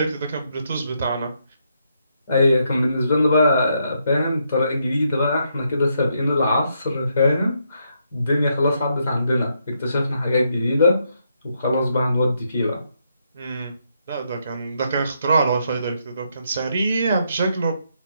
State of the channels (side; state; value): both; inverted; correlation -0.78